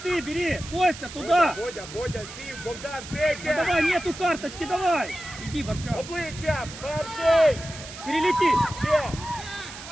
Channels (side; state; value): right; noise; hiss, 13 dB below the sound